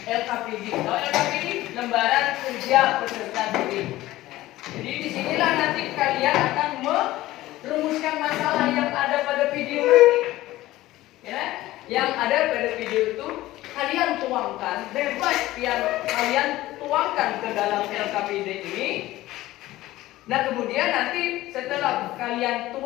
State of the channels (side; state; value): right; quieter; 16.5 dB